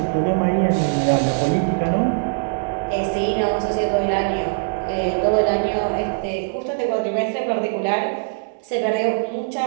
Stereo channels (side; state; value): left; silent; digital silence